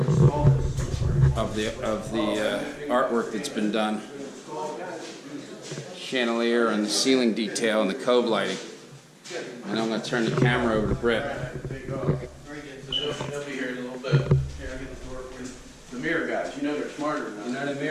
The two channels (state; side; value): identical; both; correlation 1.00